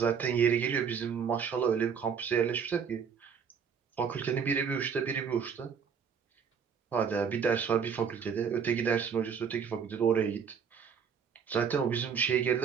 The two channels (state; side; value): quieter; left; 6.8 dB